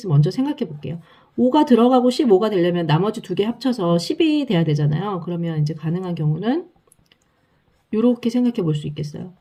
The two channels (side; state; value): both; identical; correlation 1.00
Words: 먼저 생각해 볼게요. 5가 들어가고 15가 되려면 나머지 두 개 합쳐서 10이 돼야 되잖아요. 그러면 이제 가능한 경우는 이렇게 생각해 볼 수 있겠어요.